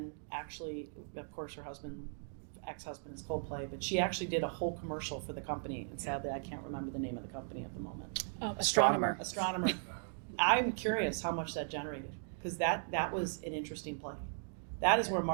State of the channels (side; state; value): left; silent; digital silence